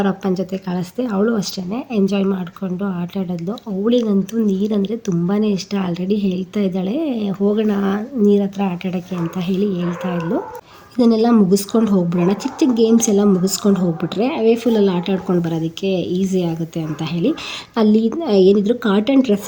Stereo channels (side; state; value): both; identical; correlation 1.00